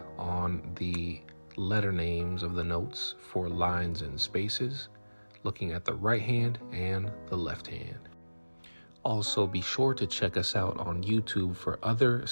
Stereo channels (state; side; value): inverted; both; correlation -1.00